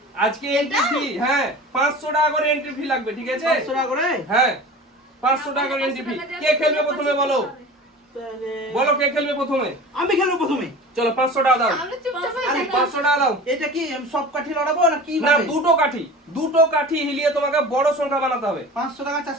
আজকে এন্ট্রি ফি, হ্যাঁ 500 টাকা করে এন্ট্রি ফি লাগবে, ঠিক আছে? 500 টাকা করে? হ্যাঁ 500 টাকা করে এন্ট্রি ফি। কে খেলবে প্রথমে বলো? বলো কে খেলবে প্রথমে? আমি খেলবো প্রথমে। চলো 500 টাকা দাও। আমরা চুপচাপ হয়ে আরে, থাকবো। 500 টাকা দাও। এটা কি আমি সব কাঠি লড়াবো না কি না, ভাবে? দুটো কাঠি হিলিয়ে তোমাকে বড় সংখ্যা বানাতে হবে। 500 টাকা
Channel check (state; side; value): normal; both; correlation 0.37